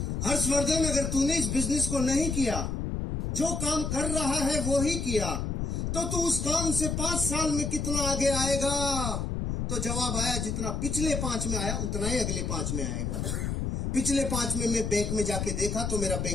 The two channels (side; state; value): left; noise; rumble, 2 dB below the sound